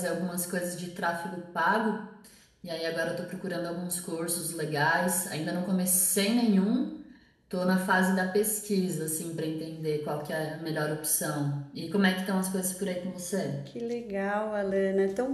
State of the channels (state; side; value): identical; both; correlation 1.00